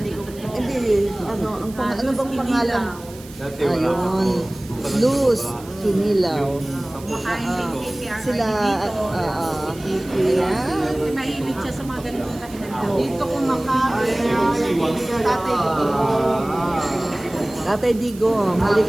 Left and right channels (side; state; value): right; noise; hiss, 20 dB below the sound